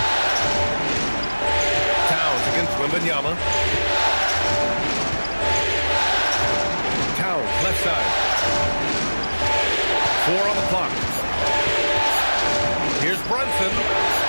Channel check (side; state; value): both; inverted; correlation -1.00